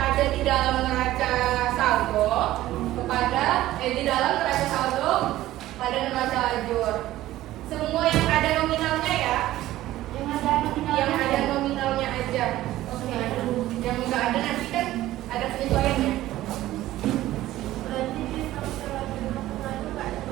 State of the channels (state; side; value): quieter; left; 15.2 dB